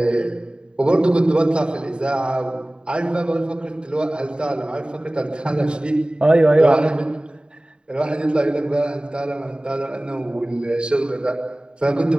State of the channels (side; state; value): left; late; 0.050 ms